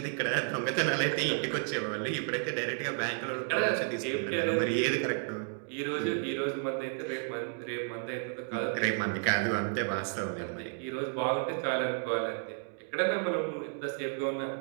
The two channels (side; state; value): left; silent; 56 dB below the other